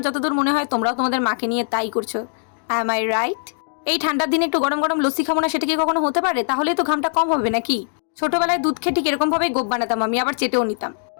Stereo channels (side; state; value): right; silent; digital silence